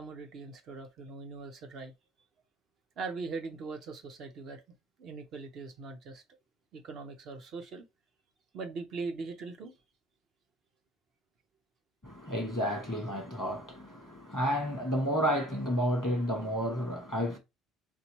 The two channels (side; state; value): both; normal; correlation 0.52